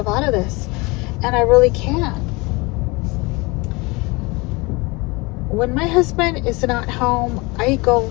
out of this. And I really can't. When my husband is not home, I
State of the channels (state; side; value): quieter; right; 25.3 dB